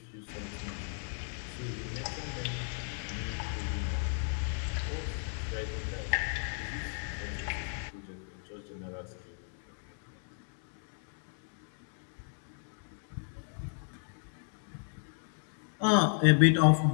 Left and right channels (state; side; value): silent; right; 55 dB below the other